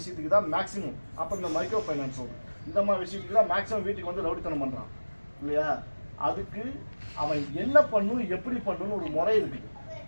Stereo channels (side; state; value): both; inverted; correlation -1.00